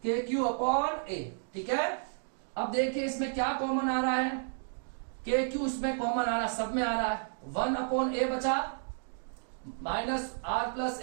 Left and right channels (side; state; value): left; silent; digital silence